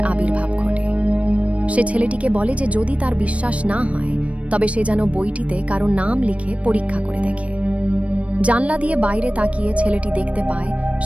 আবির্ভাব ঘটে। সে ছেলেটিকে বলে যে যদি তার বিশ্বাস না হয় তবে সে যেন বইটিতে কারো নাম লিখে পরীক্ষা করে দেখে। জানলা দিয়ে বাইরে তাকিয়ে ছেলেটি দেখতে পায়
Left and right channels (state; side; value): late; left; 0.064 ms